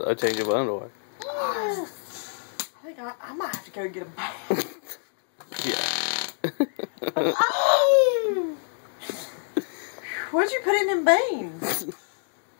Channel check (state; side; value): silent; right; 60 dB below the other